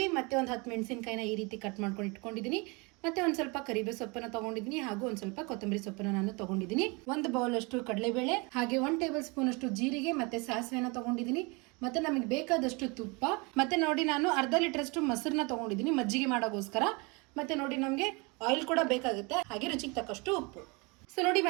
ಮತ್ತು ಒಂದು 10 ಮೆಣಸಿನ್ಕಾಯಿನ ಈ ರೀತಿ ಕಟ್ ಮಾಡ್ಕೊಂಡು ಇಟ್ಕೊಂಡಿದ್ದೀನಿ. ಮತ್ತು ಒಂದು ಸ್ವಲ್ಪ ಕರಿಬೇವು ಸೊಪ್ಪನ್ನು ತೊಗೊಂಡಿದ್ದೀನಿ, ಹಾಗೂ ಒಂದು ಸ್ವಲ್ಪ ಕೊತ್ತಂಬರಿ ಸೊಪ್ಪನ್ನು ನಾನು ತೊಗೊಂಡಿದ್ದೀನಿ. 1 ಬೌಲ್ ಅಷ್ಟು ಕಡಲೆಬೇಳೆ, ಹಾಗೆ 1 ಟೇಬಲ್ ಸ್ಪೂನ್ ಅಷ್ಟು ಜೀರಿಗೆ ಮತ್ತು ಸಾಸಿವೆನ ತೊಗೊಂಡಿದ್ದೀನಿ. ಮತ್ತು ನಮಗೆ ಬೇಕಾದಷ್ಟು ತುಪ್ಪ, ಮತ್ತು ನೋಡಿ ನಾನು ಅರ್ಧ ಲೀಟರ್ ಅಷ್ಟು ಮೊಸರನ್ನ ತೊಗೊಂಡಿದ್ದೀನಿ ಮಜ್ಜಿಗೆ ಮಾಡೋಕ್ಕೋಸ್ಕರ. ಮತ್ತು ನೋಡಿ ನಮಗೆ ಆಯಿಲ್ ಕೂಡ ಬೇಕಾಗುತ್ತೆ, ಹಾಗೆ ರುಚಿಗೆ ತಕ್ಕಷ್ಟು ಉಪ್ಪು. ಸೊ ನೋಡಿ,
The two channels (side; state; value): left; quieter; 28.6 dB